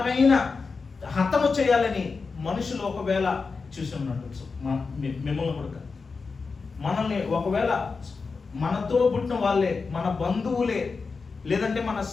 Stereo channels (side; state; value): right; quieter; 4.6 dB